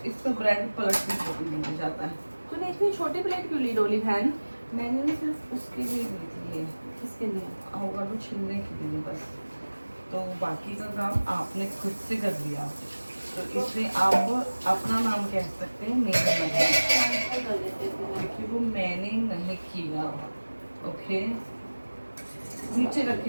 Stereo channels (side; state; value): both; inverted; correlation -1.00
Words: इससे ब्रेड पलट भी छोटी मिल जाता है। तूने इतनी छोटी प्लेट क्यों ली डोली बहन? मैंने ना सिर्फ उसके लिए ली थी ये, किसके लिए? अवोकाडो छिलने के लिए बस, तो बाकी का काम आपने खुद से कर लिया, तो इसलिए आप अपना नाम कह सकते हैं, मेरा नहीं, क्योंकि वो मैंने नहीं किया। ओके नीचे